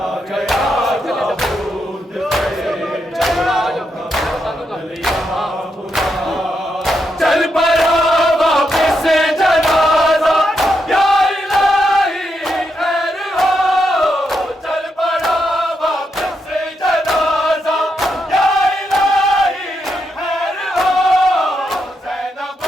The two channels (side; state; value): both; normal; correlation 0.82